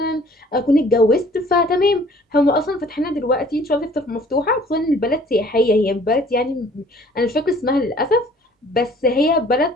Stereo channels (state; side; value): normal; both; correlation 0.54